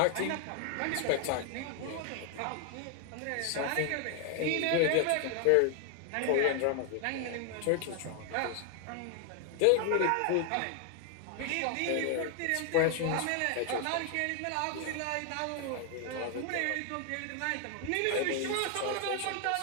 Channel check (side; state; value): both; different; correlation 0.00